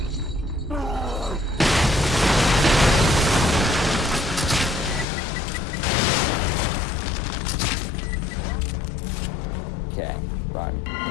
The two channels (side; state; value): right; drops out; at 5.1 s